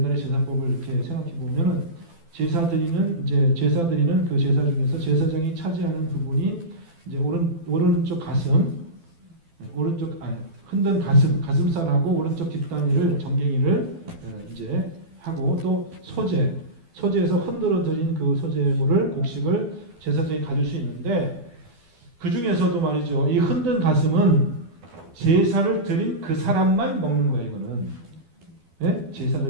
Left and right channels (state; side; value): late; left; 12 ms